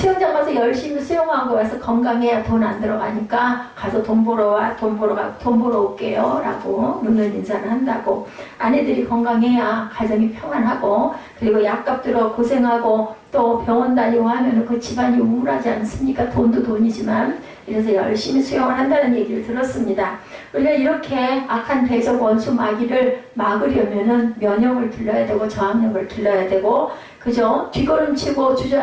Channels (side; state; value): both; identical; correlation 1.00